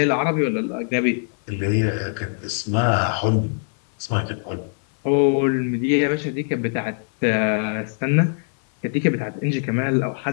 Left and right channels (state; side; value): silent; right; 64 dB below the other